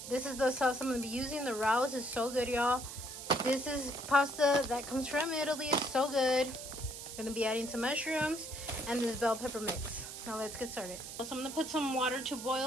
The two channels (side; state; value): right; noise; hiss, 10 dB below the sound